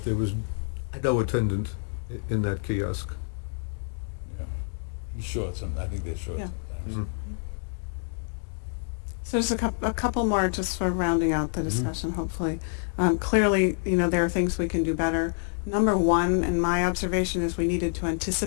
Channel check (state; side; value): silent; right; digital silence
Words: there was no attendant in that kiosk. Yeah. He's short I think they're short Yeah. sometimes. So just a couple more just for rounding out the discussion, hopefully. Clearly, there are things we can do better. Number one, in my observation, is we needed to